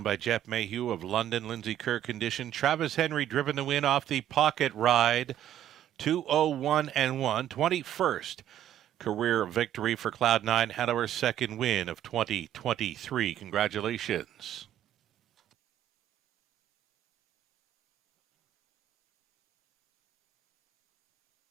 by Jeff Mayhew of London. Lindsay Kerr condition. Travis Henry driven the win off the pocket ride. 2-0-1-1. 21st career victory for Cloud 9 Hanover's second win of 2023. Congratulations.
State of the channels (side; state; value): left; quieter; 11.4 dB